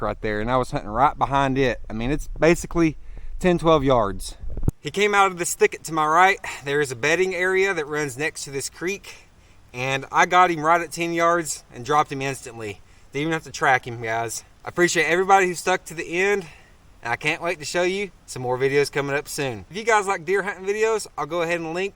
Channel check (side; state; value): both; identical; correlation 1.00